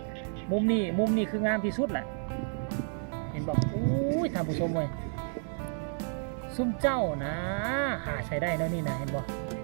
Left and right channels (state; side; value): silent; left; 57 dB below the other